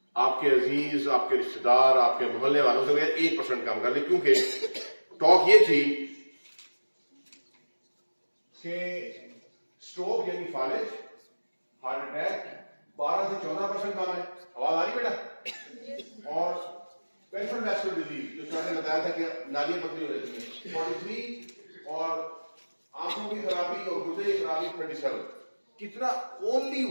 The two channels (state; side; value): inverted; both; correlation -1.00